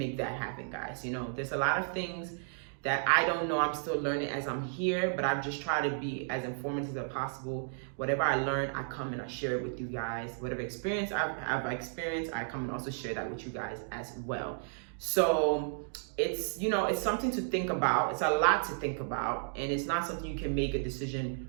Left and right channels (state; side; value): silent; left; digital silence